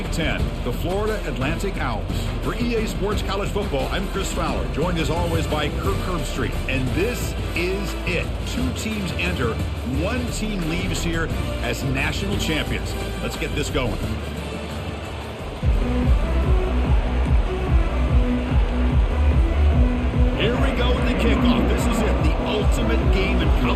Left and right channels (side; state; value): both; identical; correlation 1.00